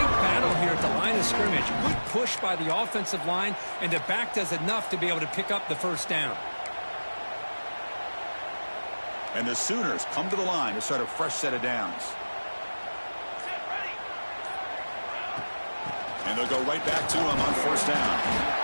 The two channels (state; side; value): inverted; both; correlation -1.00